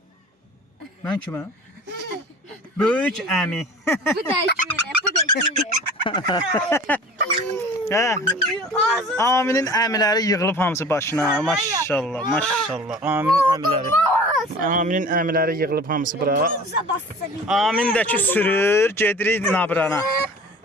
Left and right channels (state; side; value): normal; both; correlation 0.43